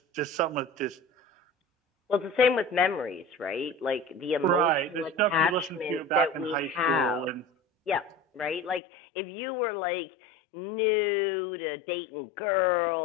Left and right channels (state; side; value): drops out; right; at 8.8 s